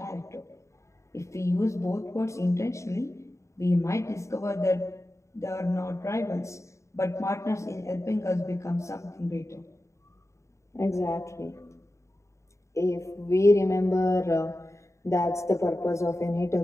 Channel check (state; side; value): late; right; 0.14 ms